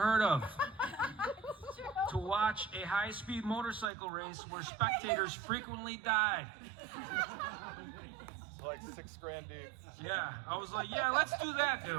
of to watch a high-speed motorcycle race where spectators frequently died. Like $6,000 deep. Yeah, I was like, yeah, let's do that,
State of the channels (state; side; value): drops out; left; at 3.9 s